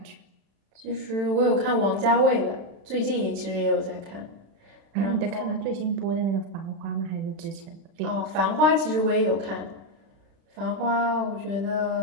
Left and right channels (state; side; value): late; left; 36 ms